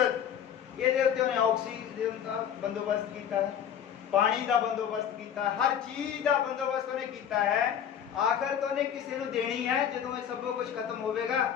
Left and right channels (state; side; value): quieter; right; 9.0 dB